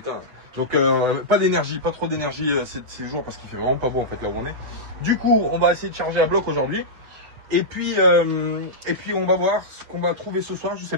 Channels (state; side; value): late; left; 7.8 ms